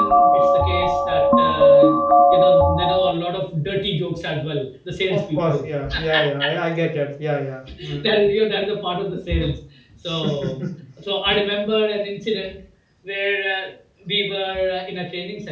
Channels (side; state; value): both; identical; correlation 1.00